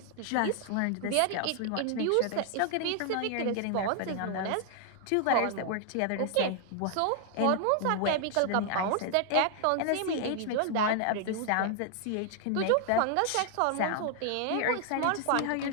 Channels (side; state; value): both; different; correlation 0.00